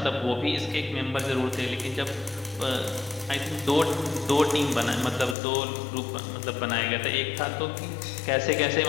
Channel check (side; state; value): right; drops out; at 5.4 s